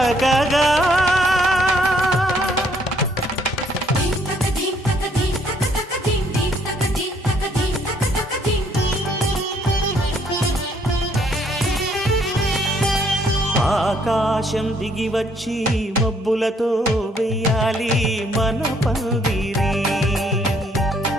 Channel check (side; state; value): both; normal; correlation 0.66